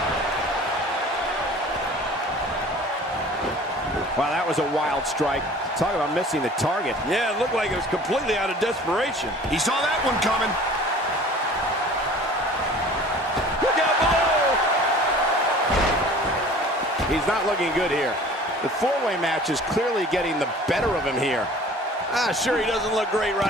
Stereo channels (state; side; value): normal; both; correlation 0.46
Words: Wow, that was a wild strike. Talk about missing the target. Yeah, it looked like it was completely out of desperation. He saw that one coming. Look out below! He's not looking good here. The four-way match is clearly getting the better of him here. Sure, he doesn't look great